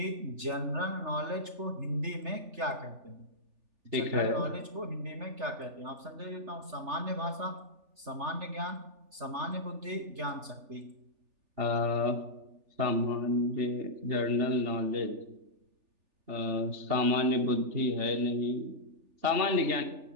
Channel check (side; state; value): left; late; 3.3 ms